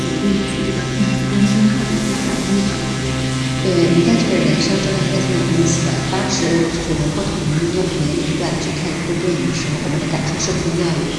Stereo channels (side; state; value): both; identical; correlation 1.00